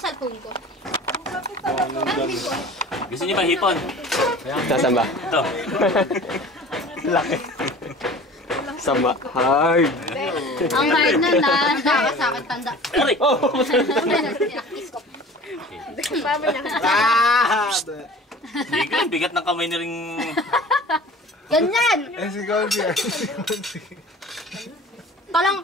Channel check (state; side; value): normal; both; correlation 0.42